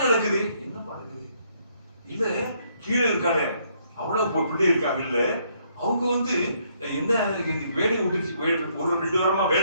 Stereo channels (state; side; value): inverted; both; correlation -0.70